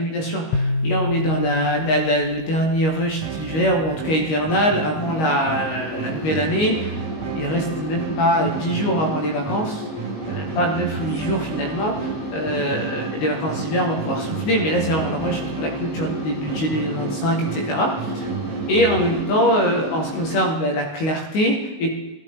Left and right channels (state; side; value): late; right; 19 ms